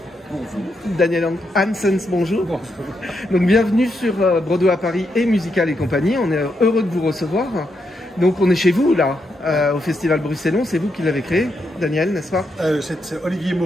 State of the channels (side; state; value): both; normal; correlation 0.81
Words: Bonjour. Daniel Hansens, bonjour. Bonjour. Donc bienvenue sur Broadway à Paris et Musical et compagnie. On est heureux de vous recevoir. Donc on est chez vous là, au Festival Bruxellon. C'est vous qui l'avez créé, Daniel, n'est-ce pas? C'est Olivier